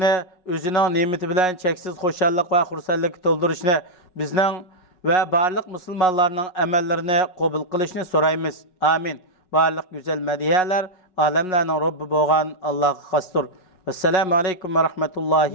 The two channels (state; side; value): late; right; 5.4 ms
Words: o'zining ne'mati bilan cheksiz xushallik va xursandlik to'ldirishni, bizning va barliq musulmonlarning amallarini qabul qilishni so'raymiz. Amin. Barliq go'zal madiyalar alamlarning Robbi bo'lgan Allohga xosdir. Assalomu alaykum va